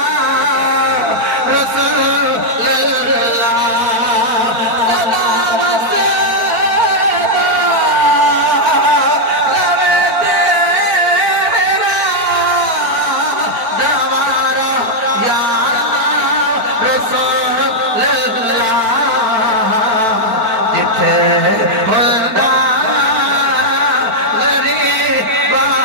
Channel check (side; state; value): left; late; 4.5 ms